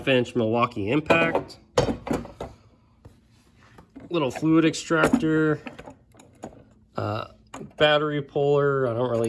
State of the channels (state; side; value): identical; both; correlation 1.00